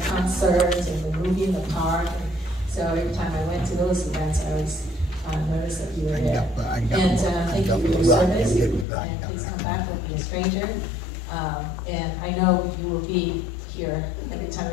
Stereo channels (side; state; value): right; drops out; at 8.8 s